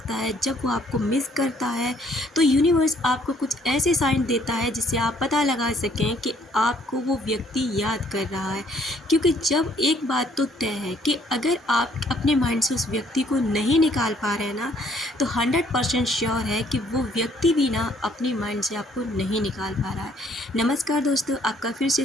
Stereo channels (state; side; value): normal; both; correlation 0.64